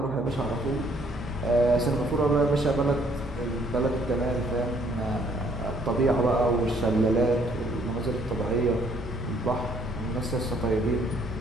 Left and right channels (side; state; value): right; noise; hum, 15 dB below the sound